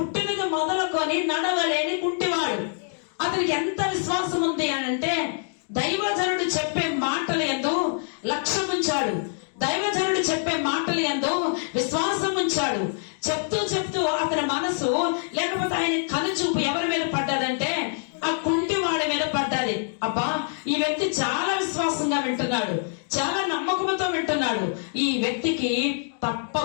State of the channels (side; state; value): right; silent; 62 dB below the other